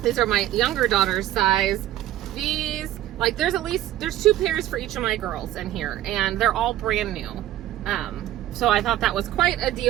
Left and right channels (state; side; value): quieter; left; 13.7 dB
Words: These are my younger daughter's size. These, like, there's 2 pairs for each of my girls in here, and they're all brand new. So I thought that was quite a